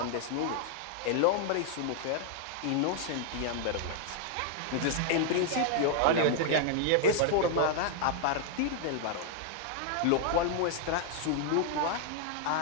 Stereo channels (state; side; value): different; both; correlation 0.00